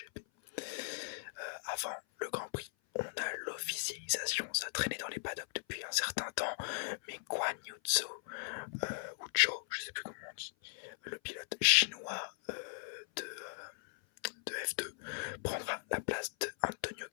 Avant le Grand Prix, on a l'officialisation, ça traînait dans les paddocks depuis un certain temps, mais Guan Yu Zhou, ou Zhou, je sais plus comment on dit, le pilote chinois de F2, prendra la place de Antonio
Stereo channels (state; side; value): silent; right; 52 dB below the other